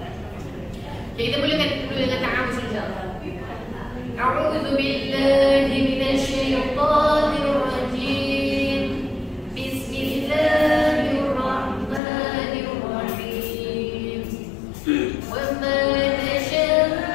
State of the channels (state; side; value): drops out; right; at 12.0 s